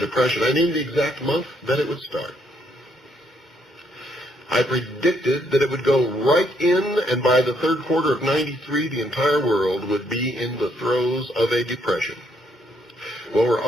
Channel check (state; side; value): normal; both; correlation 0.72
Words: depression. I named the exact month that it would start. I predicted that it would go right in, and by the third quarter of '93, the entire world would be in the throes of a depression. Well, we're